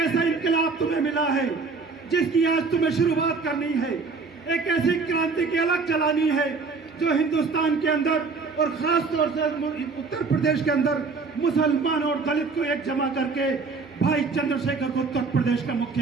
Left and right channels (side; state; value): left; quieter; 4.4 dB